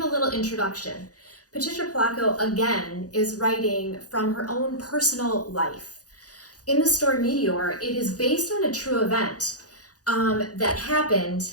little introduction. Patricia Polacco, again, is writing from her own personal life. In the story Meteor, it is based on a true event that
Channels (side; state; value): right; late; 0.67 ms